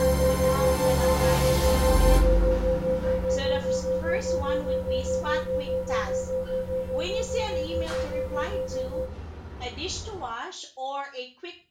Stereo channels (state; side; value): identical; both; correlation 1.00